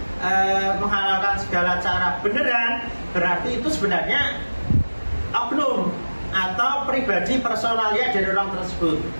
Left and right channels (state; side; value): inverted; both; correlation -1.00